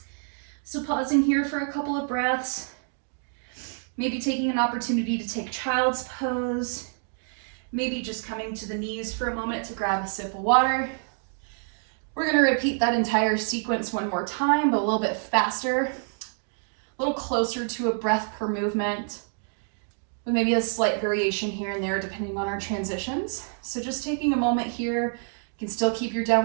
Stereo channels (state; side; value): silent; left; 57 dB below the other